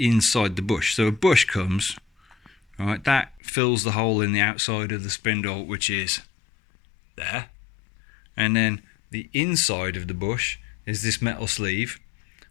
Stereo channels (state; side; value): drops out; right; at 3.4 s